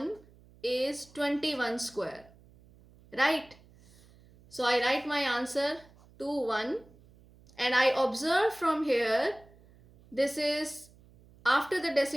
is 21 square, right? So I write my answer 21 and I observe from here, this is after the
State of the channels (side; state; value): right; noise; hum, 26 dB below the sound